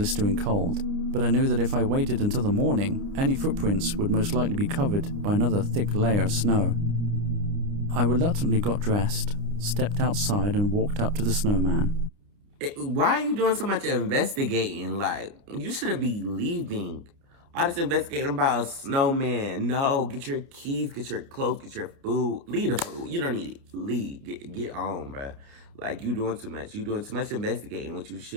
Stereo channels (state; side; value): late; left; 29 ms